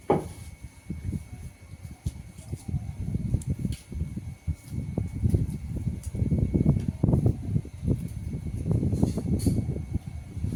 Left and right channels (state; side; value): identical; both; correlation 1.00